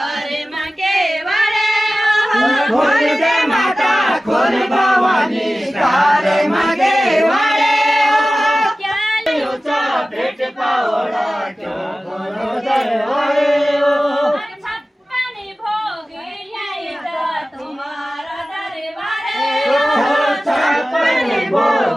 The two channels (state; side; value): normal; both; correlation 0.96